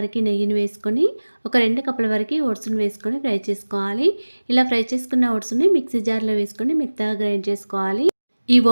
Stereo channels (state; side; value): inverted; both; correlation -1.00